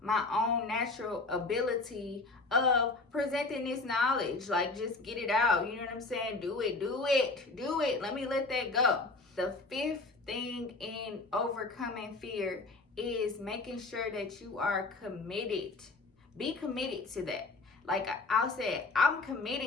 my own natural ability of presenting this knowledge. Like, just get it out. You know what I'm saying? Do it. Let me let that go. The fifth thing in overcoming fear is making sure that you are committed. Be committed to that. Like I said, I'm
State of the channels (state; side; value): quieter; right; 3.5 dB